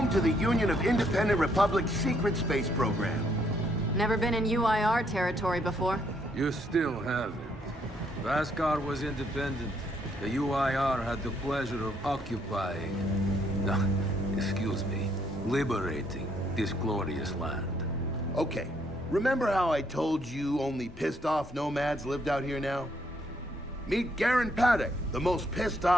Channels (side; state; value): both; normal; correlation 0.71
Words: to the Union of Independent Republic's secret space program. Never been in UIR territory before. You still haven't. Vascar was independent. The UIR had the pleasure of occupying... No, excuse me. Liberating this glorious land. Okay, remember how I told you only pissed-off nomads lived out here now? Meet Garen Paddock, the most